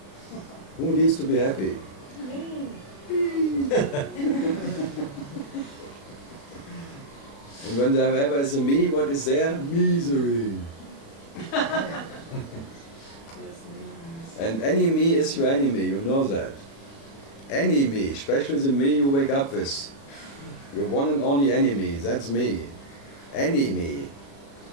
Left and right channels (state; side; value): late; right; 36 ms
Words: Who needs to be happy? Me. And when there ever is a me, what is there? Misery. And any me is your enemy, you know that. Any me, especially the me you wake up with. Your one and only enemy, that's me. Any me